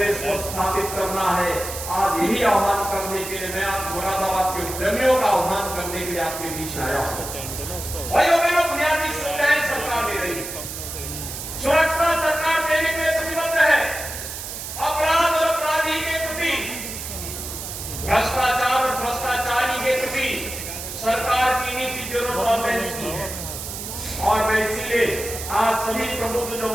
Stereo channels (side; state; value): right; noise; hiss, 8 dB below the sound